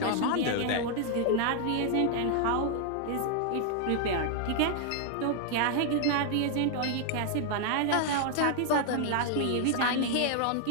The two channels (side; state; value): both; different; correlation 0.00